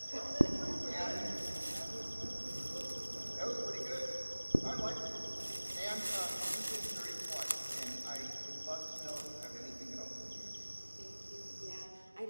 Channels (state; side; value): inverted; both; correlation -1.00